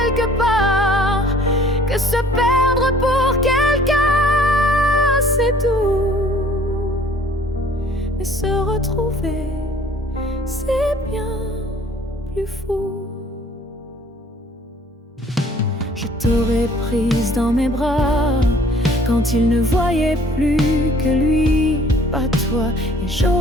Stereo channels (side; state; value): both; normal; correlation 0.55